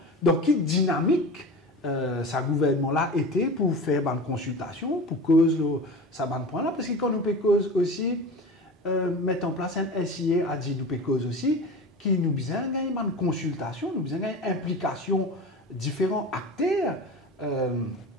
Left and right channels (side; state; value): both; normal; correlation 0.32